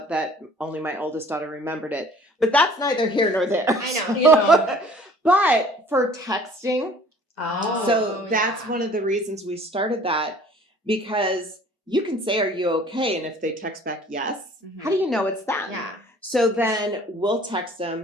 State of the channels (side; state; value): both; normal; correlation 0.52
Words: that only my oldest daughter remembered it, but that's neither here nor there. I know. So- You know. but for texting, Oh. so that's yeah. one of the reasons we started that, because you can say, "Are you okay?" And if they text back yes, Mhm. how do you know it's them? Yeah. So then we'll text